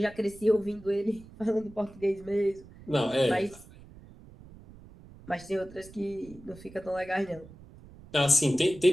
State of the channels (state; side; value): noise; right; rumble, 20 dB below the sound